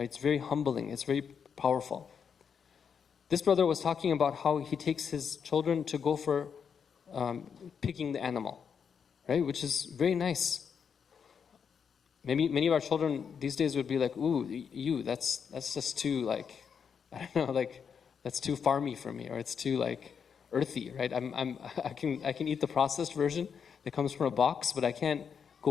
It's very humbling, it's very powerful. This brother was talking about how he takes his children to go for picking the animal, right? Which is very nice. Maybe many of our children these days would be like, ooh, that's just too that's too farmy for me, or it's too earthy, right? I can eat the processed version that comes from a box, but I can't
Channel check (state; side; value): quieter; right; 6.9 dB